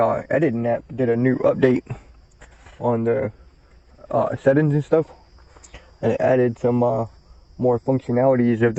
editing app did a new update on the settings and stuff, and it added some more functionalities of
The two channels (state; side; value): identical; both; correlation 1.00